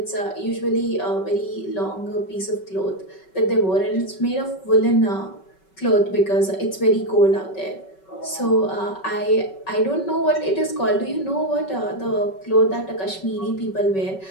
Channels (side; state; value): right; late; 5.3 ms